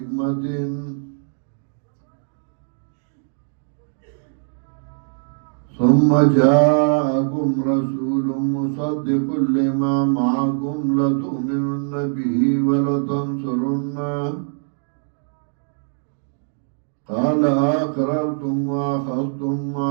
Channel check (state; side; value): silent; left; 61 dB below the other